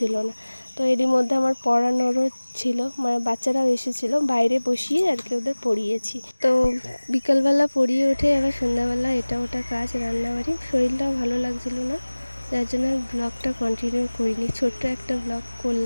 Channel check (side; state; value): both; inverted; correlation -1.00